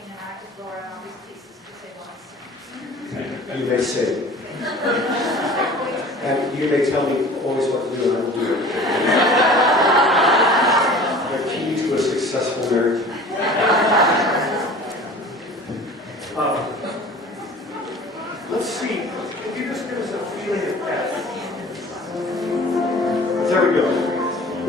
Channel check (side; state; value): both; normal; correlation 0.43